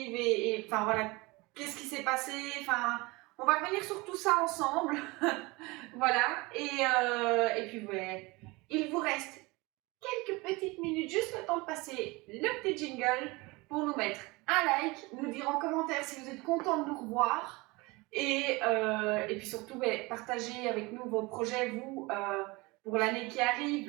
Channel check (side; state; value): left; quieter; 24.2 dB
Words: et enfin voilà, qu'est-ce qui s'est passé. Enfin, on va revenir sur tout ça ensemble. Voilà, et puis ouais, il vous reste quelques petites minutes, juste le temps de passer le petit jingle pour nous mettre un like, nous dire en commentaire si vous êtes content de nous revoir, et puis surtout, partagez avec nous vos projets, vous, pour l'année qui